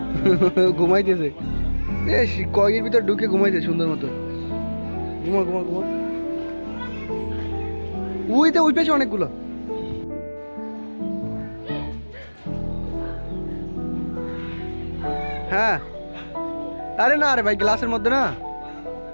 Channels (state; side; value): inverted; both; correlation -1.00